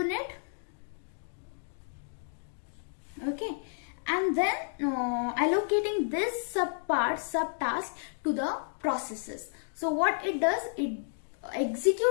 okay, and then allocating this subtask to the processes. So what it does, it execute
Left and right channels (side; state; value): right; silent; digital silence